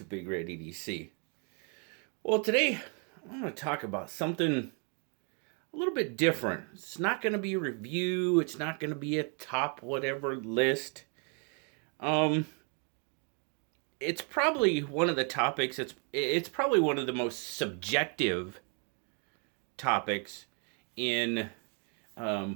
BigRedEDC. Well, today I'm going to talk about something a little bit different. It's not going to be a review. It's not going to be a top whatever list. It's probably one of the topics. It's probably one of the most subjective topics in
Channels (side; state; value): left; quieter; 38.3 dB